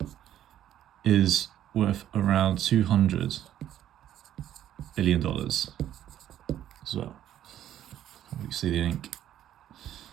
is worth around $200 billion as well. You see the ink.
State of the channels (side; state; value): left; quieter; 11.5 dB